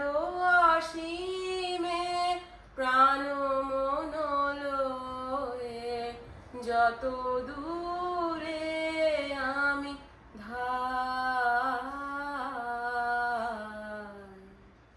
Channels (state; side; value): identical; both; correlation 1.00